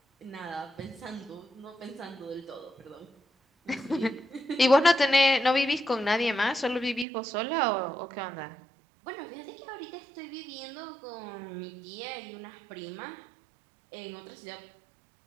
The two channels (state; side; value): drops out; left; at 7.1 s